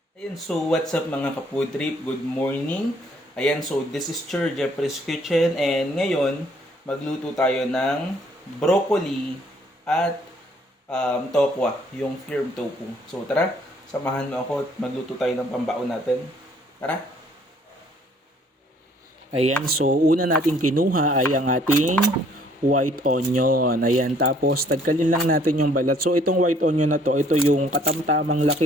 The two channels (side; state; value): both; normal; correlation 0.62